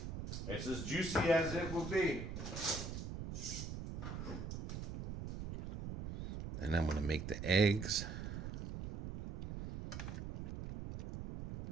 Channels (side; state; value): right; noise; rumble, 6 dB below the sound